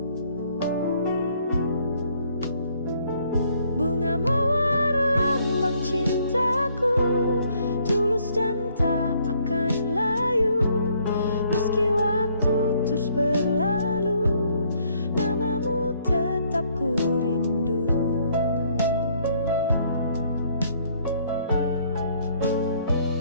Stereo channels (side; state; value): both; inverted; correlation -0.66